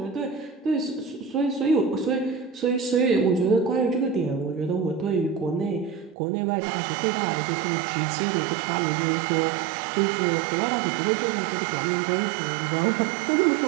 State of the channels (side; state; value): left; drops out; at 6.2 s